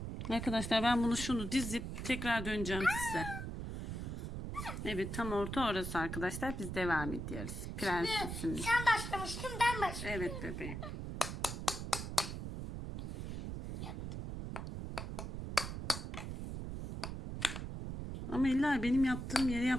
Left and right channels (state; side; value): noise; right; rumble, 5 dB below the sound